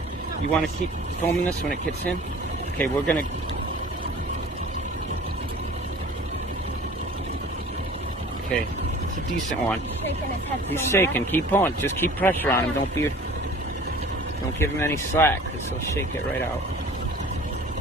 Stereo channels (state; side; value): normal; both; correlation 0.45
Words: You want to keep filming this when it gets in? Okay, we're gonna. Okay, it's a decent one. He's shaking. Keep pulling. Just keep pressure on him. Don't give him any slack, because he'll shake it right out.